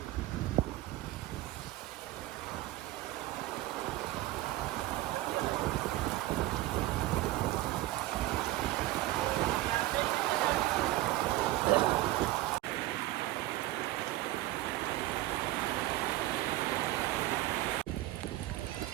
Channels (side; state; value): left; quieter; 16.4 dB